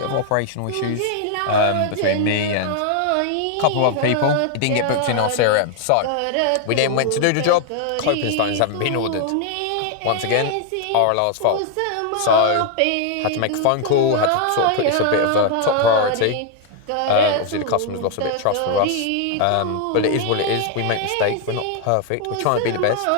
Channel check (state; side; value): different; both; correlation 0.00